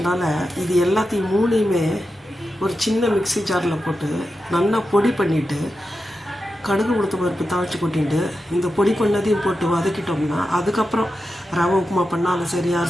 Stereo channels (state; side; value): normal; both; correlation 0.90